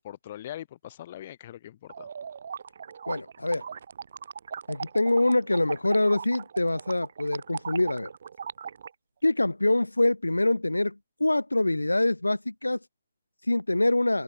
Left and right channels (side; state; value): both; inverted; correlation -0.99